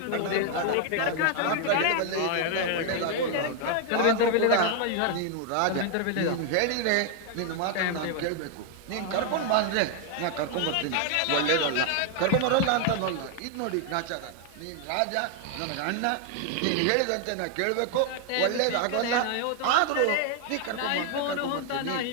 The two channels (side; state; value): both; different; correlation 0.00